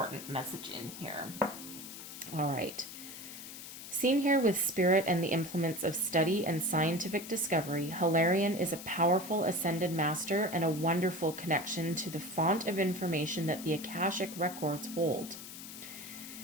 message in here. All right. Seen here with spirit and the implements of study and scientific discovery, Hilarion is a powerful ascended master and a wonderful connection to the font of information that the Akashic records hold.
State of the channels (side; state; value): left; noise; hiss, 12 dB below the sound